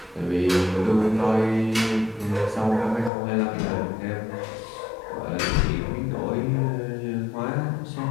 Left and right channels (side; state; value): right; drops out; at 3.1 s